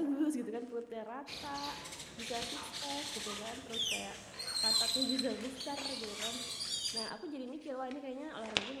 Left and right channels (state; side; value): identical; both; correlation 1.00